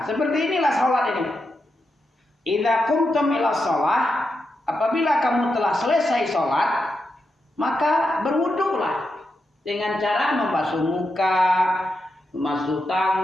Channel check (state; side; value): normal; both; correlation 0.86